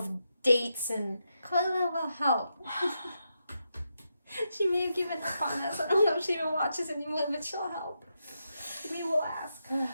dates and... Carla will help. She may have given up on us. I don't know if she even watches anymore, but she'll help. We will ask.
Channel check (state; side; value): inverted; both; correlation -0.85